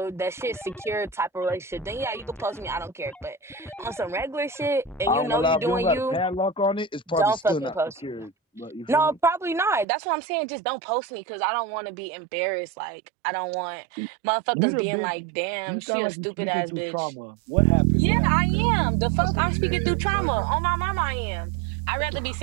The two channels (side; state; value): left; drops out; at 9.9 s